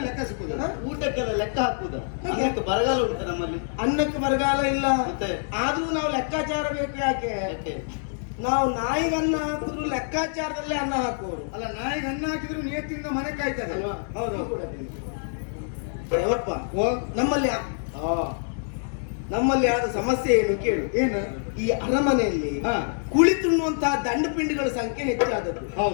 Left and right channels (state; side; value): silent; right; digital silence